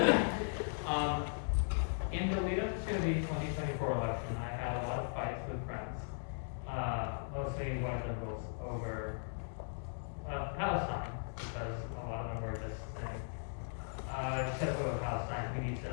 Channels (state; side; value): silent; right; digital silence